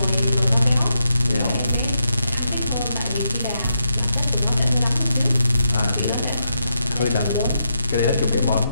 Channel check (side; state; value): both; inverted; correlation -0.83